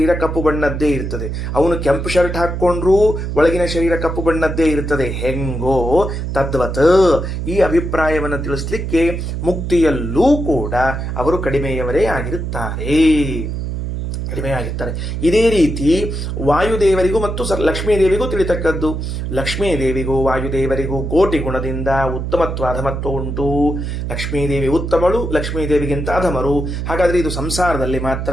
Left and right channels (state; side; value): noise; right; hum, 4 dB below the sound